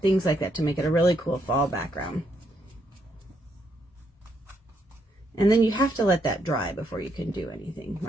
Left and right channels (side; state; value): both; normal; correlation 0.75